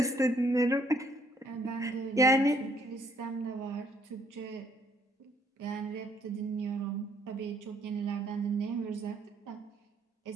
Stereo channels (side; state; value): both; normal; correlation 0.67